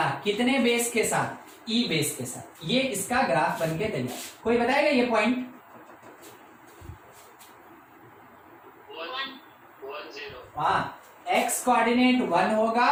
कितने बेस के साथ, e बेस के साथ, ये इसका ग्राफ बन के तैयार। कोई बताएगा ये पॉइंट, 1 0, हाँ, x कोऑर्डिनेट 1 होगा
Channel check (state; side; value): identical; both; correlation 1.00